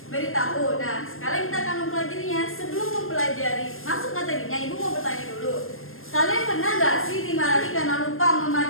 beritahu. Nah, sekarang kita akan mempelajarinya. Sebelum mempelajari masuk materinya, Ibu mau bertanya dulu. Kalian pernah nggak sih dimarahi karena lupa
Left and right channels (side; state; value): right; late; 0.60 ms